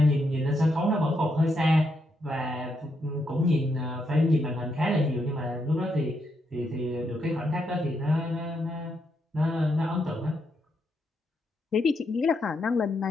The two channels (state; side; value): normal; both; correlation 0.79